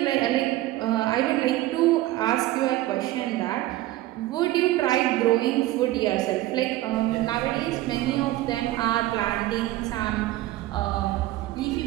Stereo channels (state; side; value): quieter; left; 16.2 dB